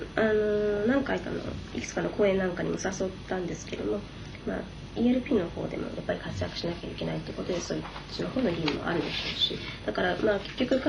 回かのいくつかの公演なんかにも誘ったんですけども、ELP の方でもやっぱり活躍しなきゃいけないということで、そういうその方の義務もあるでしょうし、だから結局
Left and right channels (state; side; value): identical; both; correlation 1.00